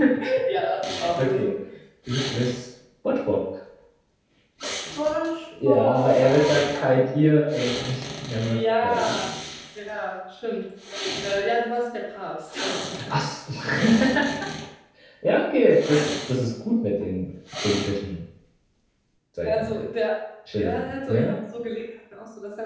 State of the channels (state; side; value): identical; both; correlation 1.00